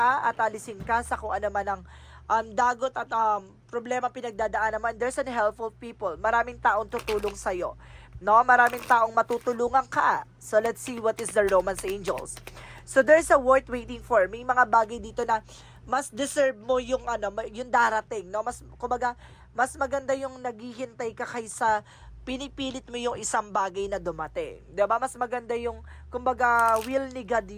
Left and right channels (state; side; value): identical; both; correlation 1.00